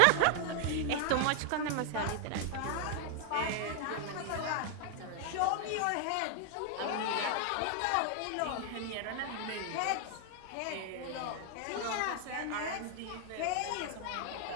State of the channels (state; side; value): different; both; correlation 0.00